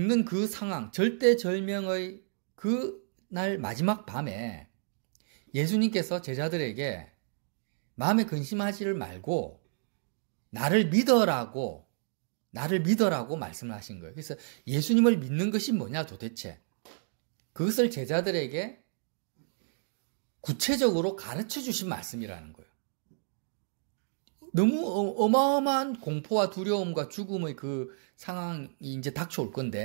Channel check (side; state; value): left; silent; digital silence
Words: 그 상황, 절대절명의 그 날 마지막 밤에 예수님께서 제자들에게 마음에 근심하지를 말고 나를 믿어라고 말씀을 하신 거예요. 그래서 예수님을 믿는 것이 뭐냐 도대체. 그것을 제자들에게 구체적으로 가르쳐 주신 말씀이라는 거예요. 너무 어마어마한 공포와 두려움과 죽음의 그 상황이 이제 닥쳐올